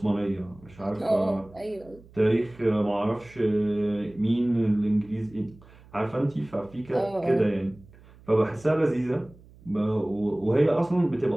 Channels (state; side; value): noise; right; hum, 24 dB below the sound